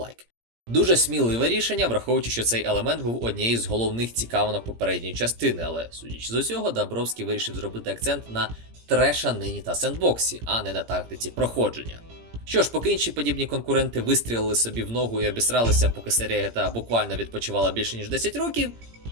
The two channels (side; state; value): left; late; 17 ms